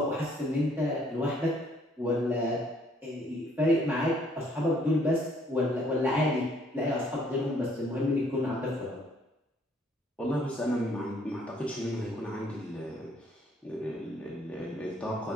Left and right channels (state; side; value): normal; both; correlation 0.64